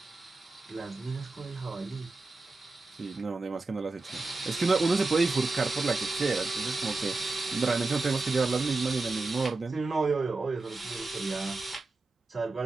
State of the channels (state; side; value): quieter; left; 3.5 dB